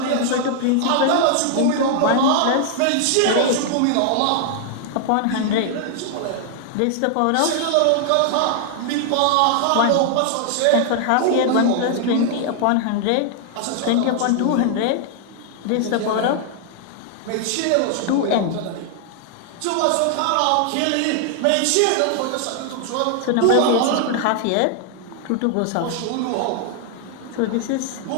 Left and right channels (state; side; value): different; both; correlation 0.00